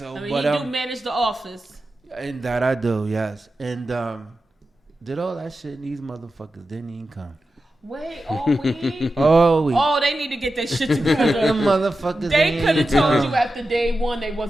I mean, but you do manage the office. and that I do, yes, and did all that shit, and these motherfuckers didn't even come. Wait, all week? Oh, Oh, they need to get their shit the together. motherfuckers. They ain't could have even told come. you after day one they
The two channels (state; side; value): normal; both; correlation 0.92